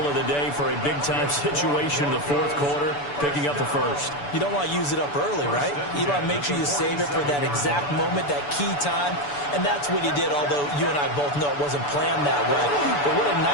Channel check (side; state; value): right; late; 6.9 ms